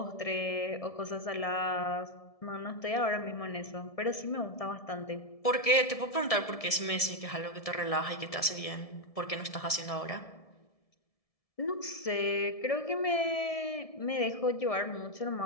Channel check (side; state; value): right; late; 1.7 ms